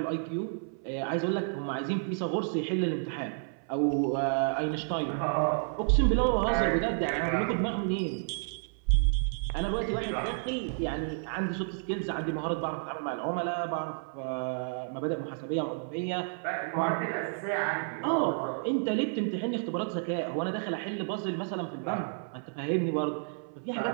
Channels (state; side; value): silent; left; 57 dB below the other